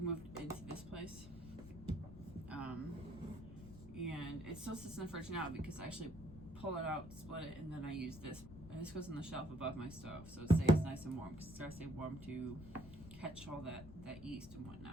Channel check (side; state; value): left; noise; rumble, 14 dB below the sound